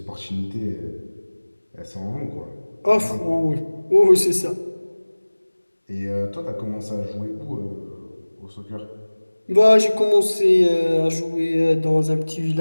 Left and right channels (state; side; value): inverted; both; correlation -1.00